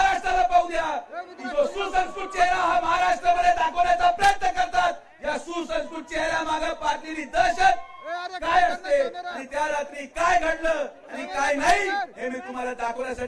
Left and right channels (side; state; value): both; identical; correlation 1.00